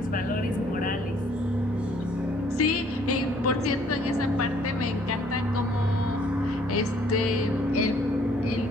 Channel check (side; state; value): both; normal; correlation 0.61